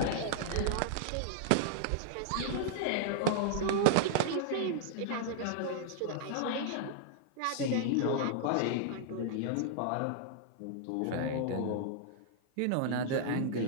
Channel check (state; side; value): different; both; correlation -0.01